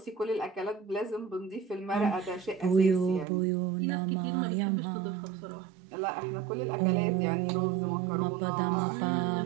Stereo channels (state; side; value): drops out; left; at 3.2 s